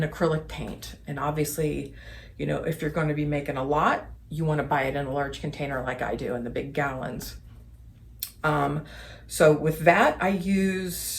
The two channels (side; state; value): both; identical; correlation 1.00